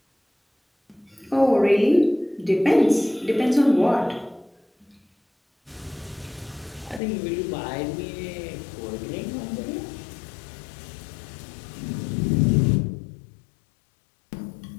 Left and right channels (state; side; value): drops out; right; at 7.0 s